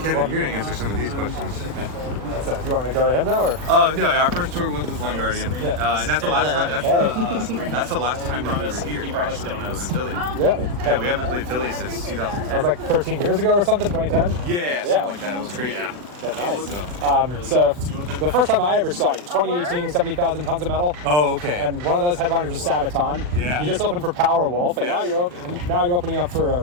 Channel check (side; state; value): left; late; 40 ms